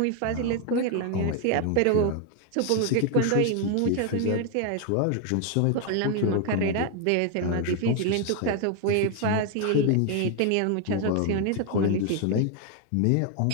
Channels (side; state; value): both; different; correlation 0.01